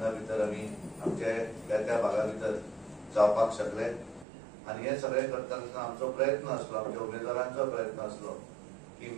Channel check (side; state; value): left; drops out; at 4.2 s